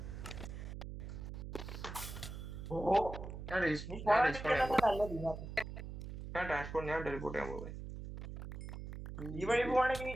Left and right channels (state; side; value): noise; right; hum, 8 dB below the sound